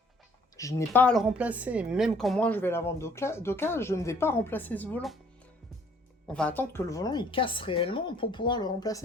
Je n'ai pas à le remplacer. Même quand moi je vais la vendre d'occasion, je ne vais pas remplacer ce volant. On va attendre que le volant il casse réellement pour pouvoir le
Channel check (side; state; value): both; normal; correlation 0.59